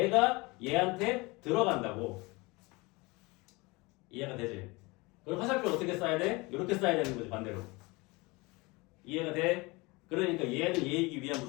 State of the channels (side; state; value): right; quieter; 24.7 dB